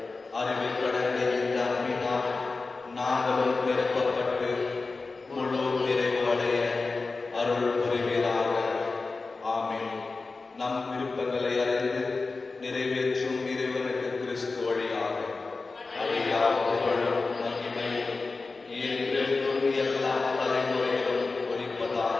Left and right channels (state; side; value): quieter; right; 3.9 dB